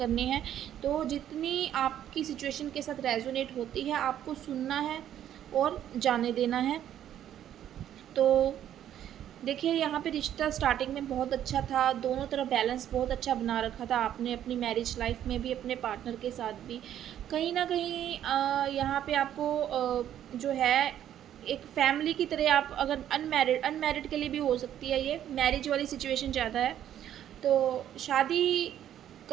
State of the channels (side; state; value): left; quieter; 10.9 dB